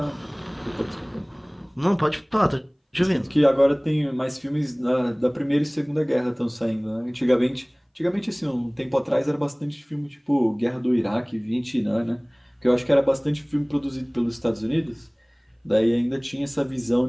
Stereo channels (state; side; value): identical; both; correlation 1.00